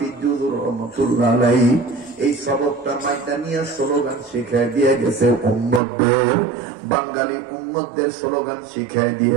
রহমাতুল্লাহ আলাইহি এই সবকটা মাইদানিয়া স্লোগান শিখায় দিয়ে গেছে উম্মতদের, বাঙালি উম্মতদের স্লোগান শিখায়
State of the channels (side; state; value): left; drops out; at 5.8 s